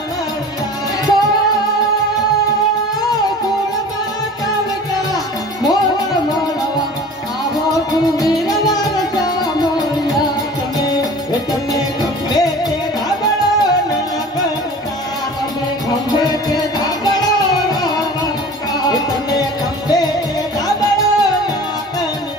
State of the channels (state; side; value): normal; both; correlation 0.41